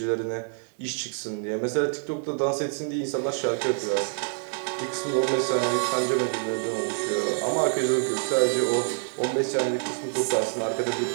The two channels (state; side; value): silent; left; digital silence